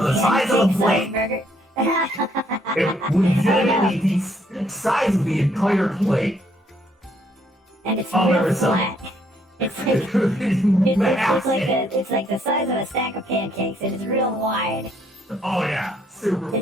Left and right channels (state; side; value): normal; both; correlation 0.69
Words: the size of a plate. Burger. It legitimately the size of the entire plate. And it's Oh, real there was some- flat. It's Massive. it's like the size of a stack of pancakes. It is real wide. Oh yeah, super It's